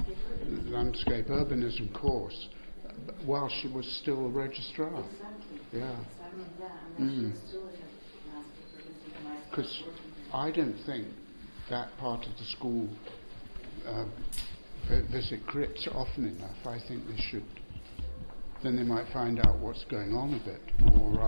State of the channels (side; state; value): both; inverted; correlation -1.00